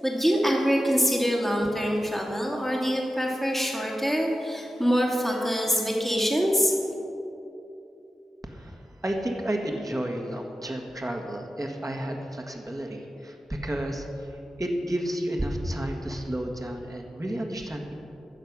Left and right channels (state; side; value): normal; both; correlation 0.92